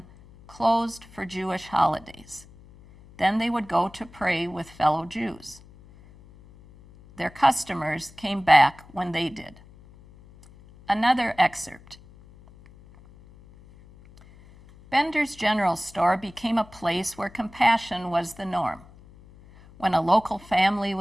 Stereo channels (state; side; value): noise; left; hum, 23 dB below the sound